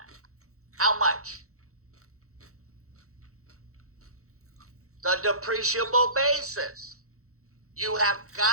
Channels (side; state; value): left; late; 0.64 ms